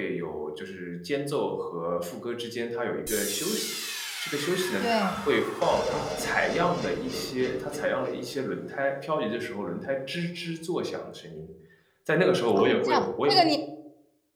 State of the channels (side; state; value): both; identical; correlation 1.00